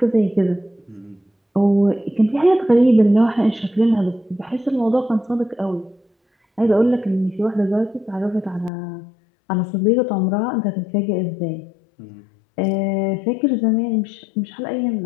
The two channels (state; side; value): drops out; right; at 8.7 s